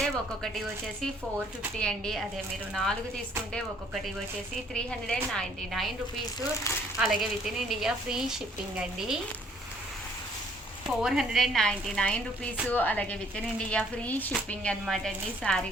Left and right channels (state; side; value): normal; both; correlation 0.62